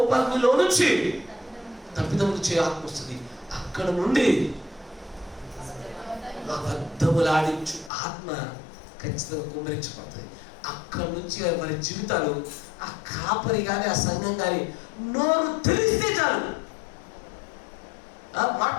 నుంచి తప్పిదములు చేయ ఆత్మ వస్తుంది. అక్కడ నుండి అబద్ధములాడించు ఆత్మ ఖచ్చితంగా కుమ్మరించబడుతుంది. అక్కడ నుంచి వారి జీవితాలు, ఆ కాపరి కానీ ఆ సంఘం కానీ నోరు తెలిస్తే చాలు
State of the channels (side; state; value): right; drops out; at 7.9 s